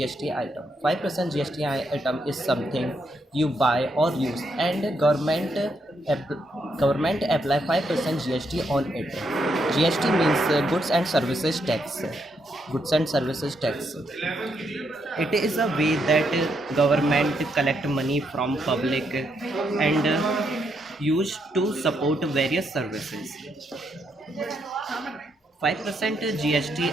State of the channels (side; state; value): both; normal; correlation 0.78